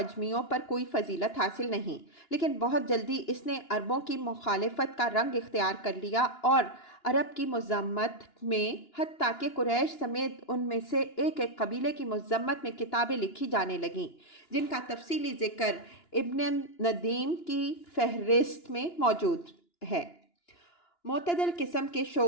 پر کوئی فضیلت حاصل نہیں، لیکن بہت جلدی اس نے عربوں کی مخالفت کا رنگ اختیار کر لیا اور عرب کی مذمت میں حتیٰ کہ قریش سمیت ان میں سے ایک ایک قبیلے کی مذمت میں کتابیں لکھی جانے لگیں جن کا تفصیلی ذکر ابن ندیم کی فہرست میں موجود ہے۔ معتدل قسم کے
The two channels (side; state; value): right; late; 2.9 ms